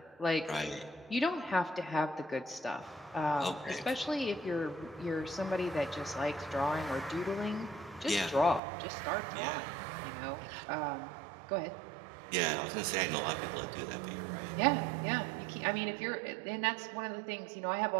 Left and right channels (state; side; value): drops out; left; at 8.6 s